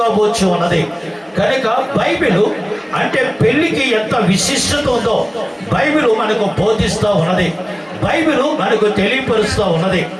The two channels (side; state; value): both; identical; correlation 1.00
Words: ఉన్నది. కనుక బైబిల్ అంటే పెళ్లికి ఎంత విశిష్టత ఉందో బైబిల్ మనకు బోధిస్తూ ఉన్నది, బైబిల్ మనకు తెలియపరుస్తూ ఉన్నది.